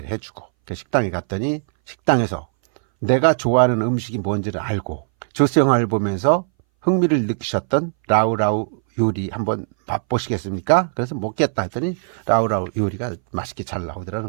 해주고, 그 식당에 갔더니 식당에서 내가 좋아하는 음식이 뭔지를 알고 조스 영화를 보면서 흥미를 느끼셨던 라우라우 요리 한번 맛보시겠습니까? 그래서 먹겠다 했더니 라우라우 요리가 맛있게 잘 나오더라는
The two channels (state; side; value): silent; left; 62 dB below the other